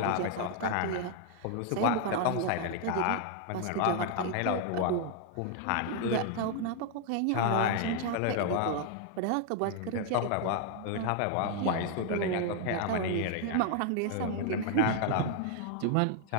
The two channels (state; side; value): different; both; correlation 0.00